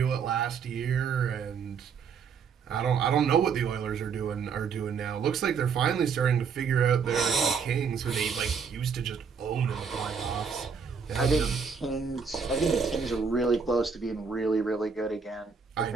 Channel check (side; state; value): left; quieter; 6.0 dB